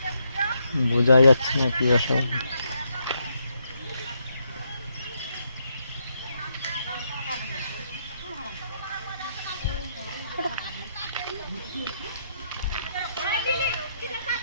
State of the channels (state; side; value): inverted; both; correlation -0.77